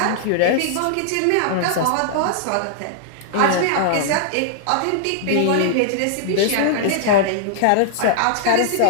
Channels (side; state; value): both; different; correlation -0.01